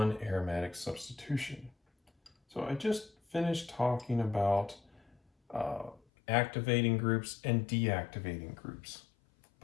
aromatic substitution. So I just finished talking about activating groups and deactivating groups,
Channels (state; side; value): drops out; right; at 6.0 s